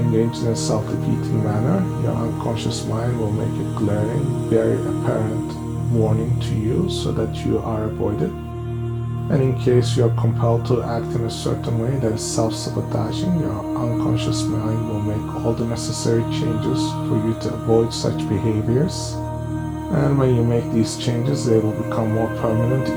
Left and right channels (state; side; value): identical; both; correlation 1.00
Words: in a self-defeating manner, your unconscious mind will make a glaring, very apparent warning to you so that you are avoided. And in case you're compelled to act in a certain way that is self-sabotaging, your unconscious mind will make all the necessary changes for you to avoid such behaviors. And when you make these changes, they will become more permanent